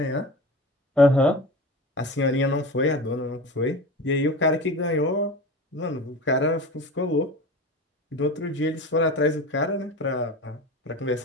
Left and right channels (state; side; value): normal; both; correlation 0.32